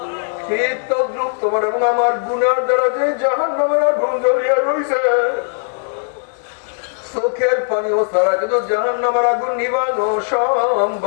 ঠিক তদ্রুপ তোমার এবং আমার গুনার দ্বারা যে জাহান্নামের আগুন জ্বলিয়া রইছে, চোখের পানিও ছাড়া কিন্তু জাহান্নামের আগুন নিবানো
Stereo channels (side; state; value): right; silent; digital silence